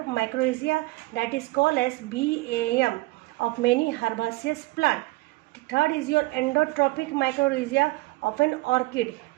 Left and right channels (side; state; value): left; quieter; 21.9 dB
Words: mycorrhiza, that is called as BAM, of many herbaceous plant. Third is your endotropic mycorrhiza of an orchid,